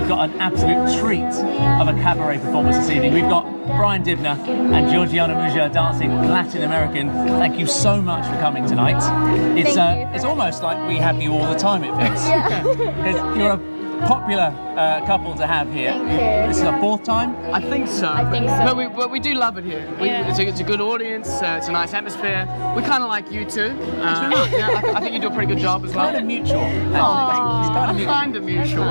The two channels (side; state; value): both; inverted; correlation -1.00